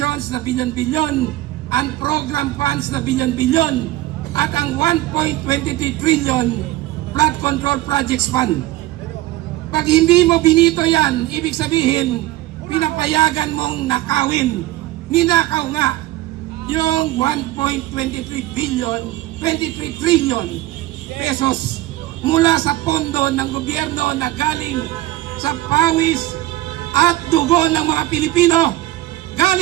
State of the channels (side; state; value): left; quieter; 16.5 dB